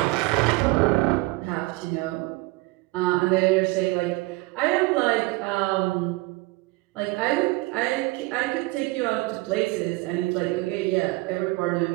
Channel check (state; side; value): quieter; left; 22.8 dB